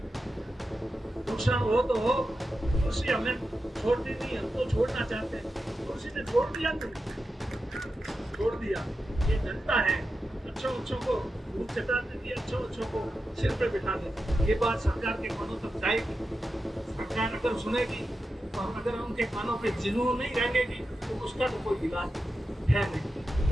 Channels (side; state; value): both; normal; correlation 0.90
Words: नुकसान हो तो हो, कुर्सी हमें छोड़नी नहीं, हम तो छोड़ना चाहते हैं। कुर्सी ने छोड़ दिया, छोड़ दिया। ये जनता है, अच्छों को धूप चटा देती, अच्छों को सिर पे बिठा देती। ये बात सरकार के कानों तक जाएगी, सरकार अगर सुनेगी और अगर उनके कानों पे जुनून नहीं रहेगी तो उसका तो कोई इलाज है नहीं।